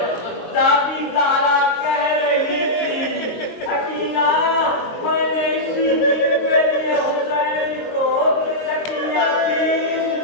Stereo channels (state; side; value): late; right; 22 ms